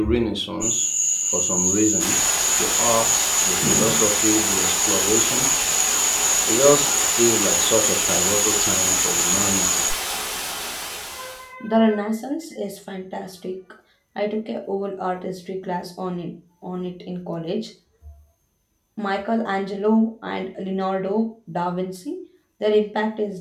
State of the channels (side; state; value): both; identical; correlation 1.00